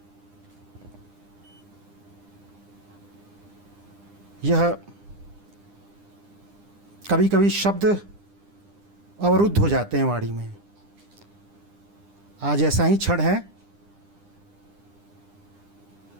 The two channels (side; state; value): left; late; 9.9 ms